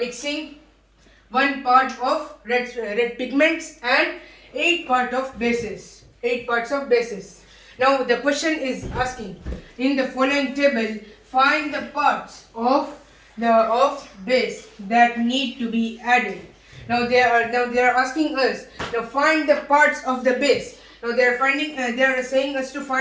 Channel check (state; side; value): identical; both; correlation 1.00